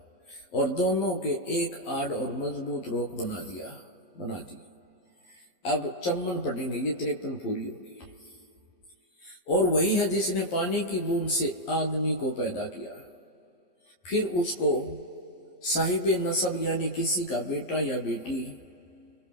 और दोनों के एक आड़ और मजबूत रोक बना दी। अब 54 पढ़ेंगे, ये 53 पूरी होगी। और वही है जिसने पानी की बूंद से आदमी को पैदा किया, फिर उसको साहिब नसब यानी किसी का बेटा या बेटी,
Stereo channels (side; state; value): right; late; 11 ms